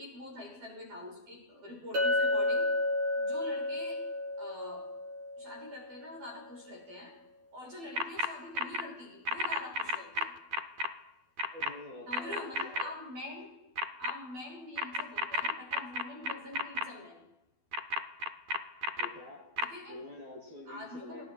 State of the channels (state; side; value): late; left; 12 ms